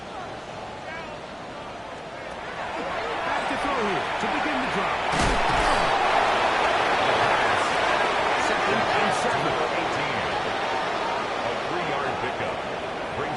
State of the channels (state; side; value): identical; both; correlation 1.00